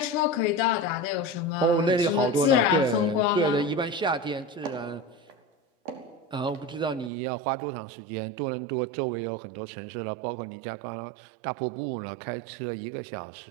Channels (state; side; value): drops out; left; at 7.1 s